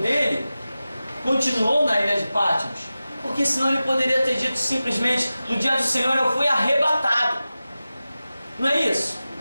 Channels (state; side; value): inverted; both; correlation -0.95